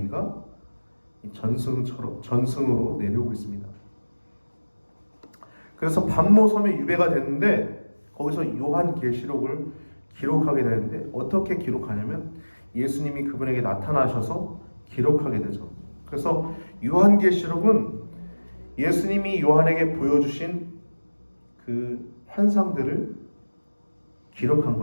전승으로 내려오고 있습니다. 그래서 반모섬에 유배가 됐는데 거기서 요한계시록을 기록하게 되는데 어떻게 기록하냐면 예수님이 그분에게 나타나셔서 기록하게 되죠. 그래서 요한계시록은 예수님이 요한에게 보여주신 그 환상들을 기록한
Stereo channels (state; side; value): inverted; both; correlation -1.00